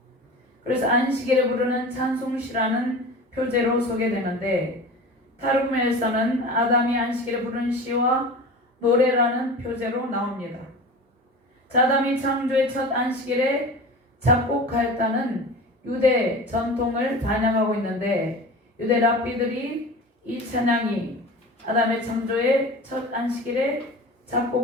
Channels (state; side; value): normal; both; correlation 0.34